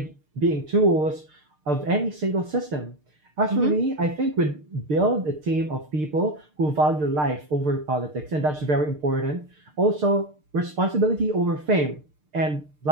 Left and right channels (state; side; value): late; left; 6.6 ms